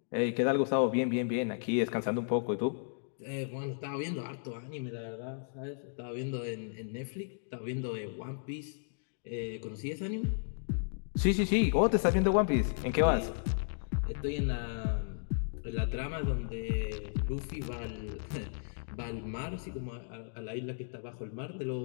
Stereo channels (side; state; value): right; silent; digital silence